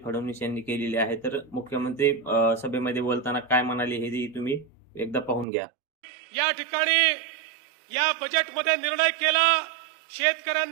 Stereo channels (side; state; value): left; drops out; at 5.5 s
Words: फडणवीस यांनी केलेली आहे। तर मुख्यमंत्री सभेमध्ये बोलताना काय म्हणाले हे तुम्ही एकदा पाहून घ्या। या ठिकाणी या बजेटमध्ये निर्णय केला